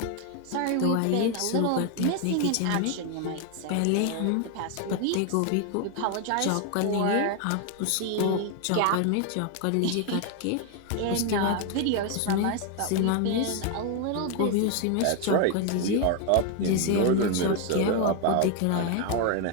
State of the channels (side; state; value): both; different; correlation 0.01